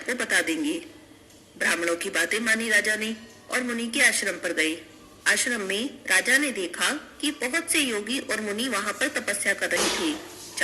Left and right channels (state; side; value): identical; both; correlation 1.00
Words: बता देंगे। ब्राह्मणों की बातें मानी राजा ने और मुनि के आश्रम पर गए। आश्रम में राजा ने देखा कि बहुत से योगी और मुनि वहाँ पर तपस्या कर रहे थे।